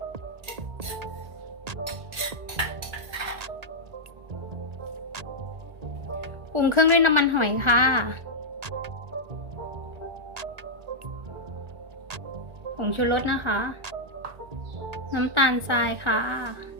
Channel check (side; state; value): left; late; 1.4 ms